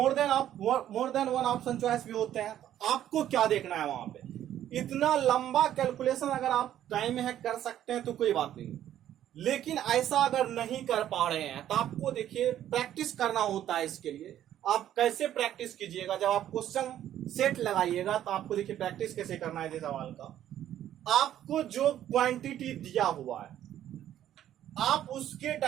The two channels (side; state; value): left; quieter; 11.6 dB